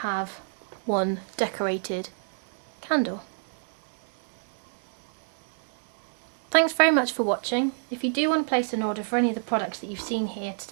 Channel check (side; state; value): left; silent; digital silence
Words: one decorated candle. Thanks very much for watching. If you do want to place an order for any of the products that you've seen here